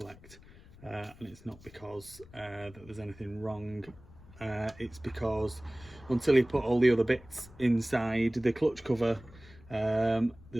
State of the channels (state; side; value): noise; left; rumble, 22 dB below the sound